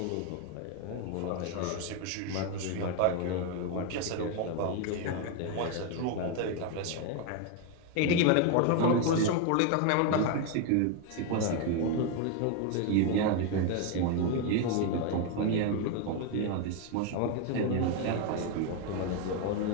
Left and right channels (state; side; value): different; both; correlation 0.01